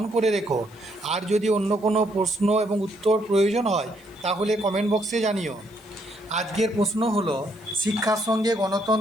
করে রেখো। আর যদি অন্য কোনো প্রশ্ন এবং উত্তর প্রয়োজন হয় তাহলে কমেন্ট বক্সে জানিও। আজকের প্রশ্ন হলো, শিক্ষার সঙ্গে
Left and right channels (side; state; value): left; noise; hiss, 28 dB below the sound